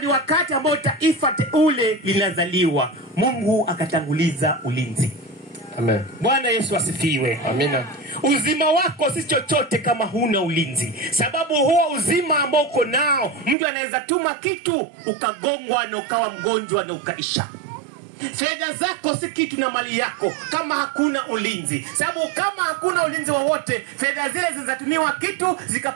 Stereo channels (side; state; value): left; drops out; at 13.6 s